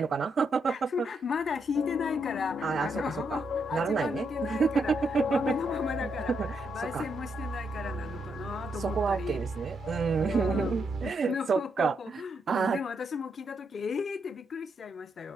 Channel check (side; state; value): both; normal; correlation 0.79